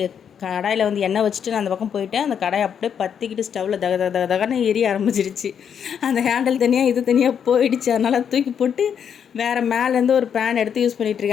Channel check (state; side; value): quieter; right; 7.9 dB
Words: கடாயில் வந்து எண்ணெய் வச்சுட்டு நான் அந்த பக்கம் போயிட்டேன். அந்த கடாயை அப்படியே பற்றிக்கிட்டு ஸ்டவ்வில் தகன்னு எரிய ஆரம்பிச்சிருச்சு. அந்த ஹேண்டில் தனியாக இது தனியாக போயிடுச்சு. அதனால் தூக்கி போட்டு வேறு மேலேருந்து ஒரு பேன் எடுத்து யூஸ்